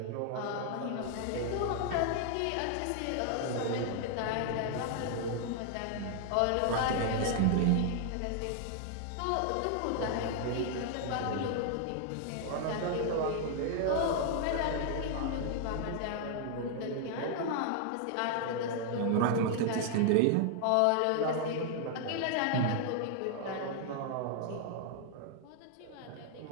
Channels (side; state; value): both; different; correlation 0.00